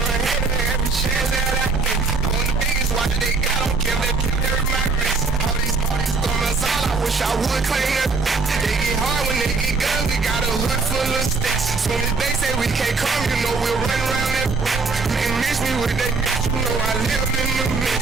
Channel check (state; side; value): quieter; left; 4.3 dB